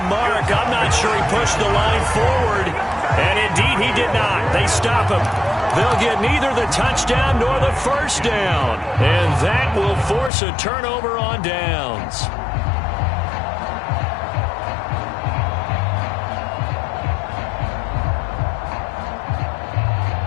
mark. I'm not sure he pushed the line forward. And indeed, he did not. They They stop him. They'll get neither the touchdown nor the first down. And that will force a turnover on downs.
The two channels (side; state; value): right; drops out; at 10.3 s